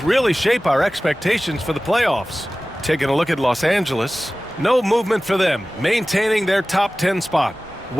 really shape our expectations for the playoffs. Taking a look at Los Angeles, no movement for them, maintaining their top 10 spot.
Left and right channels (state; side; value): normal; both; correlation 0.97